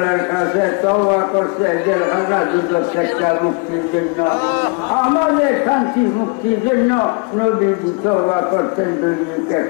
কাছে তওবা করছে জেলখানা দুদক থেকে মুক্তির জন্য, আমাদের শান্তি মুক্তির জন্য নবীজি তওবা করতেন দৈনিক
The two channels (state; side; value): quieter; right; 31.6 dB